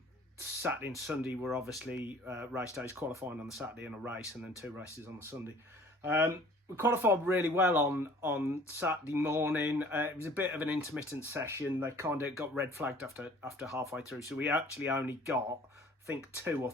and Sunday were obviously race days, qualifying on the Saturday and a race, and then 2 races on the Sunday. We qualified really well on Saturday morning. It was a bit of an intermittent session. They kind of got red flagged after halfway through. So we actually only got, I think, 2 or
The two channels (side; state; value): both; normal; correlation 0.51